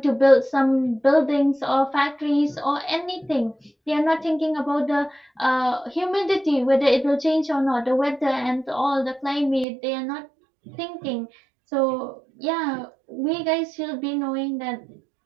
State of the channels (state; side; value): drops out; left; at 9.7 s